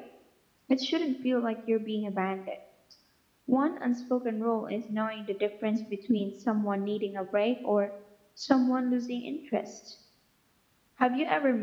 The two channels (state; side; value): identical; both; correlation 1.00